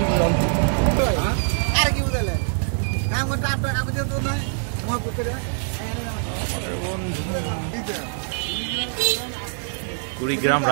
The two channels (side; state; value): left; silent; digital silence